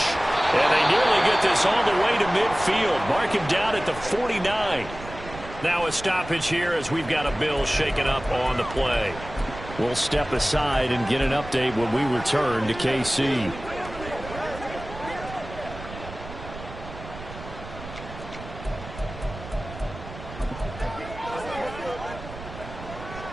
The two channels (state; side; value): noise; right; rumble, 13 dB below the sound